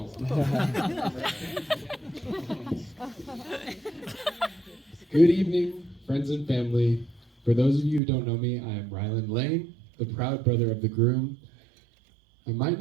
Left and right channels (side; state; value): left; drops out; at 8.0 s